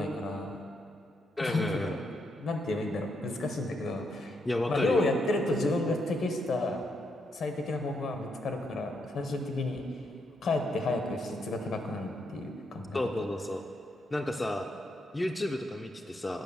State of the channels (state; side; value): normal; both; correlation 0.79